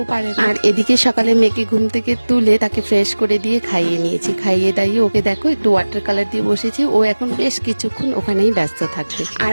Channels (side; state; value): both; inverted; correlation -1.00